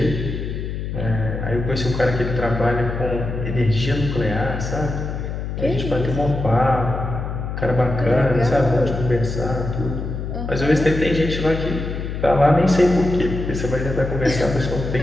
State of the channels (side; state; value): left; noise; hum, 5 dB below the sound